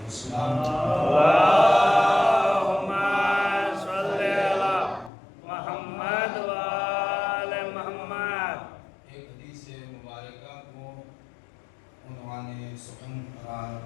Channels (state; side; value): drops out; right; at 5.1 s